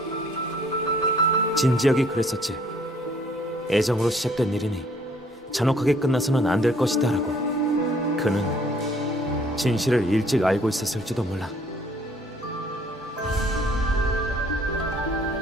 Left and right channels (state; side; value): normal; both; correlation 0.60